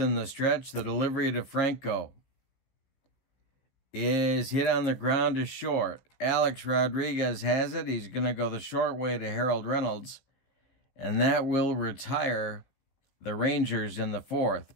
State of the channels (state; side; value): late; right; 16 ms